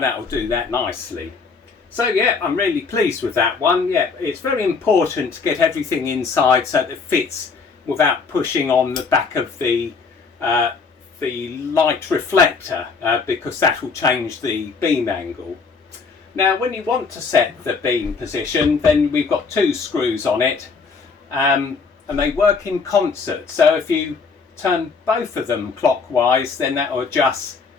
that'll do that nicely. So yeah, I'm really pleased with that one. Yeah, it's very important to get everything inside so that it fits without pushing on the back of the light reflector, because that will change the beam angle. Now when you want to set the beam position, then we've got two screws on it, and they work in concert. So if you turn both of them clockwise, then that will adjust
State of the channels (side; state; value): right; quieter; 5.0 dB